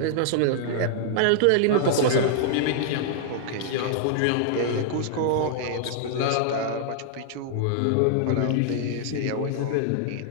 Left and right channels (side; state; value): both; different; correlation -0.01